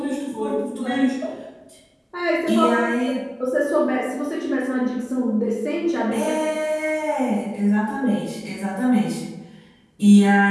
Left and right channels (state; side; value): identical; both; correlation 1.00